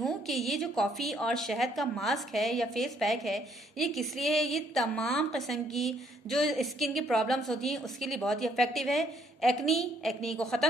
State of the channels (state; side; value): normal; both; correlation 0.68